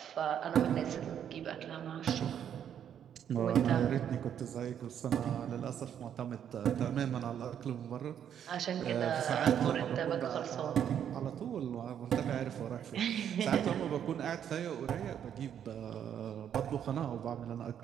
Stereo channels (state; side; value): quieter; left; 9.2 dB